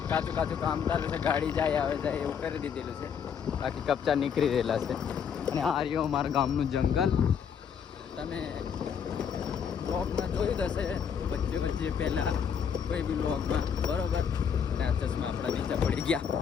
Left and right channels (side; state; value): right; quieter; 7.4 dB